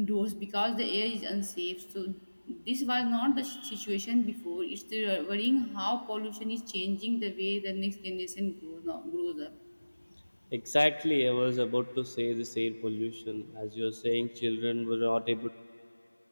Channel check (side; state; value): both; inverted; correlation -1.00